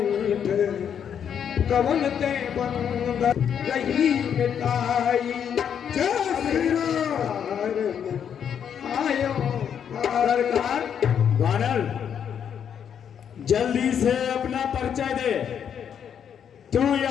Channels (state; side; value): quieter; right; 8.3 dB